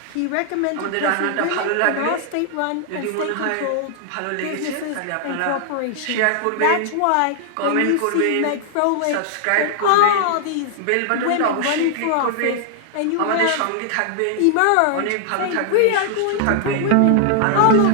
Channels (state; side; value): different; both; correlation 0.00